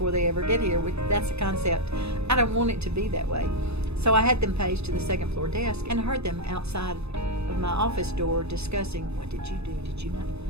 they ever get here. That's a concept. I don't want it to be that way. So I had them paged to the second floor desk and heard them outside of my office door discussing, what did you do? Did you not?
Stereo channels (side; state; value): left; late; 0.79 ms